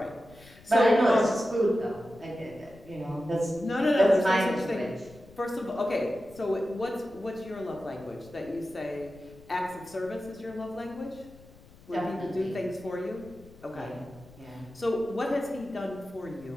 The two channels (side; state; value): left; noise; rumble, 22 dB below the sound